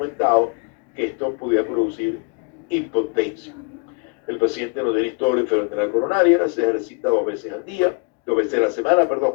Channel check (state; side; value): quieter; right; 31.6 dB